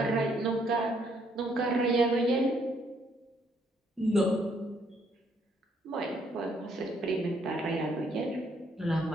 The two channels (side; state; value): both; normal; correlation 0.69